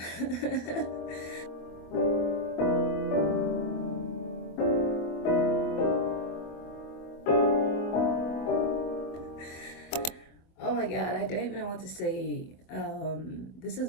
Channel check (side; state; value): right; late; 24 ms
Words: Oh my god, I don't even know what to say. This is